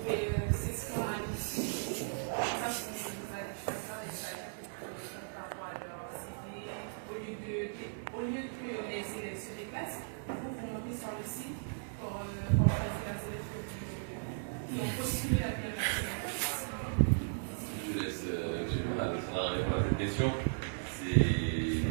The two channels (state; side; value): silent; left; digital silence